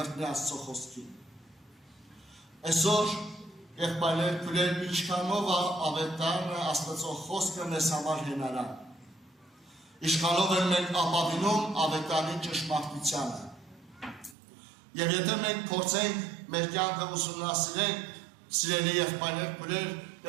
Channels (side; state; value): left; drops out; at 14.4 s